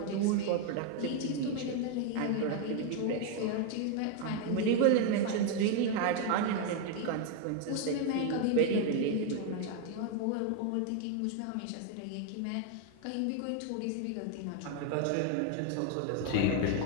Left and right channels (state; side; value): different; both; correlation 0.01